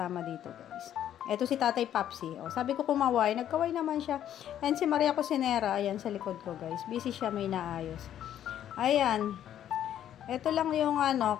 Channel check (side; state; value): right; quieter; 10.8 dB